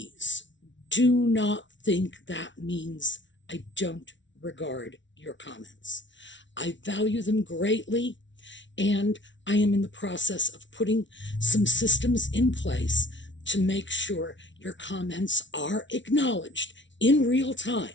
do not think that means I don't regard your comments. I value them greatly, and I am in the process of putting some systems in place to make sure your comments are acknowledged in real time,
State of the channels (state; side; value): late; right; 0.55 ms